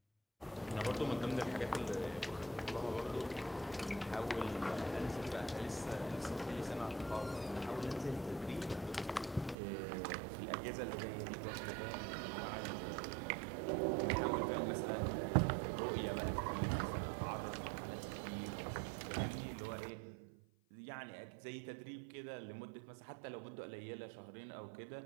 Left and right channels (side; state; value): left; drops out; at 9.6 s